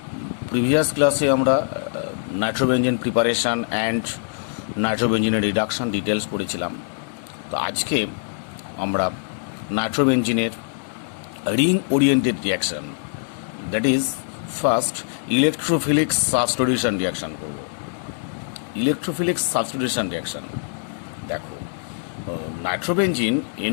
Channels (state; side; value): silent; right; digital silence